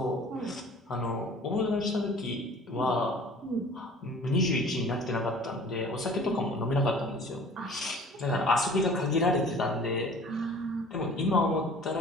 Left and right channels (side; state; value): both; normal; correlation 0.47